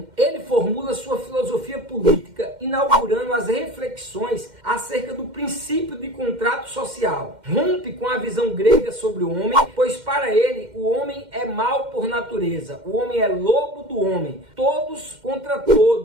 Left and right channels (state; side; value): late; left; 2.1 ms